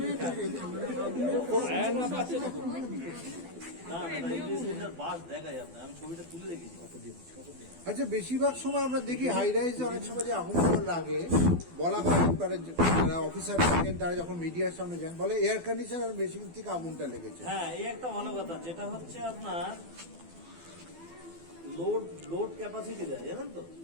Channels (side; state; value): left; late; 12 ms